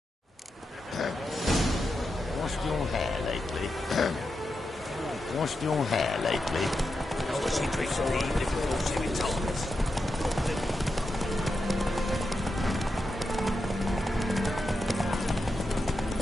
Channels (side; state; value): both; normal; correlation 0.88